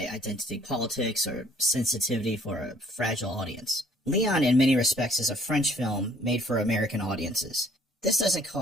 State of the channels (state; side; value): normal; both; correlation 0.60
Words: identity politics or sensitivity for a fragile audience. Leon in many respects is a French film made for American audiences. This doesn't